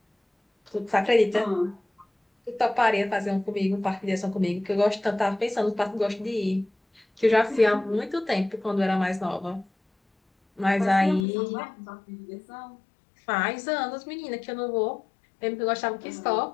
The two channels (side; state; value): right; drops out; at 11.2 s